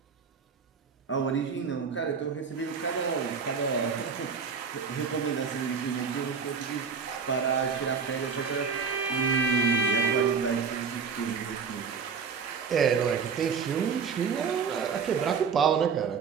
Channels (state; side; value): quieter; left; 6.0 dB